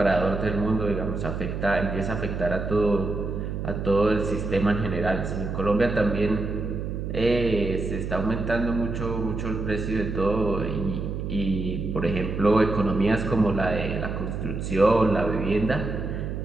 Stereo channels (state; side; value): noise; right; hum, 4 dB below the sound